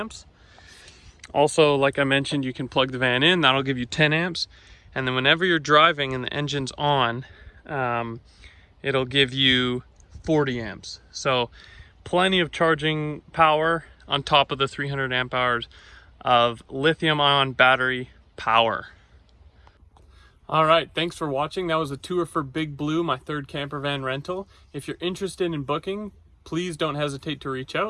Also, like I mentioned, you can plug the van in, that'll give you 10 amps. And then whenever you're driving and the engine's on, it'll give you 40 amps. So plenty of charging power on top of the 300 amp hours of lithium-ion battery power. All right, thanks for watching. That was a tour for Big Blue, my 3rd camper van rental. If you're interested in booking, please don't hesitate to reach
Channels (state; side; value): identical; both; correlation 1.00